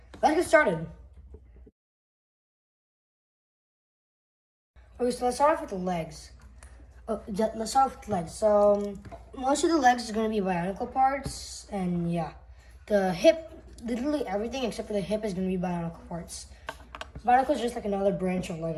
Let's get started. Okay, so let's start off with the legs. Let's start off with the legs. So most of the legs is going to be bionicle parts, and yeah, the hip, literally everything except for the hip is going to be bionicle parts. Bionicle is just like another branch of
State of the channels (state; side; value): identical; both; correlation 1.00